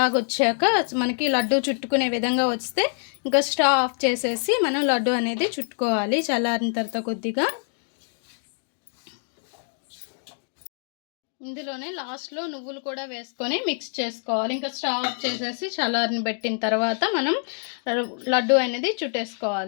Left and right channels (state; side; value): silent; right; 61 dB below the other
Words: వచ్చాక మనకి లడ్డు చుట్టుకునే విధంగా వస్తే ఇంకా స్టవ్ ఆఫ్ చేసేసి మనం లడ్డు అనేది చుట్టుకోవాలి. చల్లారిన తర్వాత కొద్దిగా ఇందులోనే లాస్ట్లో నువ్వులు కూడా వేసుకొని మిక్స్ చేసుకోవాలి. ఇంకా స్టవ్ ఆఫ్ చేసేసి చల్లారిని పెట్టిన తర్వాత మనం లడ్డు అనేది